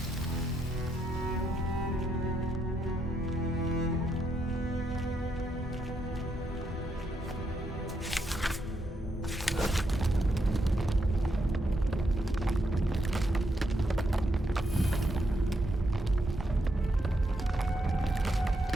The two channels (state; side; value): normal; both; correlation 0.79